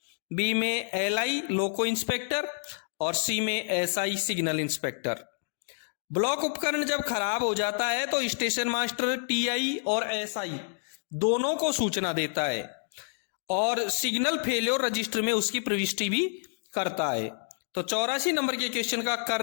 बी में LI लोको इंस्पेक्टर और सी में SI सिग्नल इंस्पेक्टर। ब्लॉक उपकरण जब खराब हो जाता है तो स्टेशन मास्टर TI और SI दोनों को सूचना देता है और सिग्नल फेल्योर रजिस्टर में उसकी प्रविष्टि भी करता है। तो 84 नंबर के क्वेश्चन का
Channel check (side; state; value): right; silent; digital silence